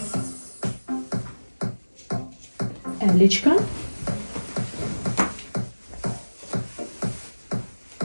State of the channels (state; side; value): inverted; both; correlation -1.00